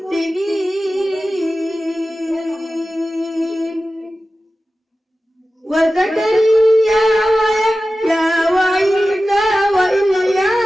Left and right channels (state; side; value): normal; both; correlation 0.95